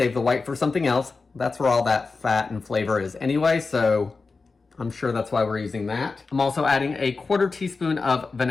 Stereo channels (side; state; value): right; quieter; 4.2 dB